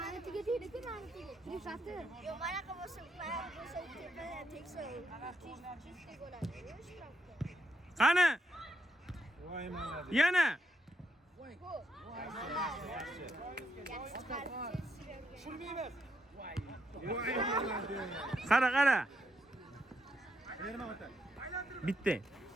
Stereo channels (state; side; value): normal; both; correlation 0.79